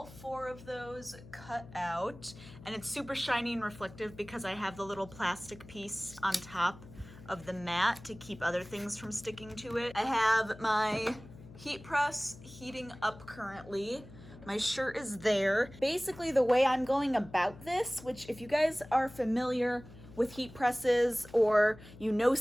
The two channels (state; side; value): noise; left; hum, 18 dB below the sound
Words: 4 of those cut out, and it's super shiny and reflective because I have the little plastic piece on top of the mat to keep other things from sticking to it. I have my heat press heating up currently. My shirt is there. Basically, the way I'm going about this, which if you guys are familiar with heat presses or you know